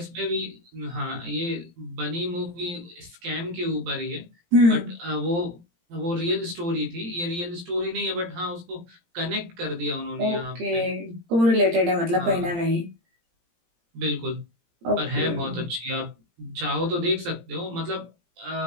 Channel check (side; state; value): left; late; 17 ms